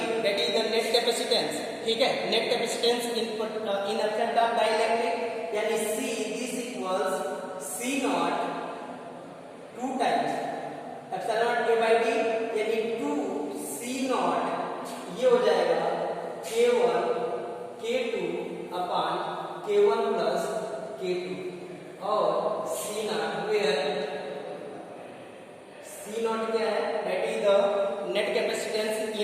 that is the net capacitance. ठीक है, net capacitance in absent of dielectric, यानी C this equals C0 2 times epsilon not A/D, यानी 2 C0, ये हो जाएगा K1 K2 अपान K1 प्लस K2, और C0 वेयर C0 क्या है? That is the net capacitance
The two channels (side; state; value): both; identical; correlation 1.00